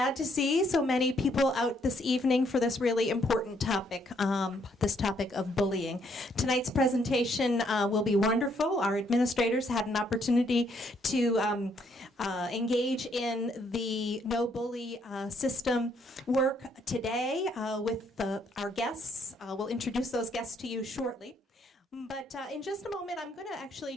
to see so many people out this evening for this really important topic, this topic of bullying. Tonight's presentation will be wonderful. Our administrators had an opportunity to engage in the no bully system work today with our guests. We'll introduce those guests to you shortly. But in just a moment, I'm going to actually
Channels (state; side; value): normal; both; correlation 0.70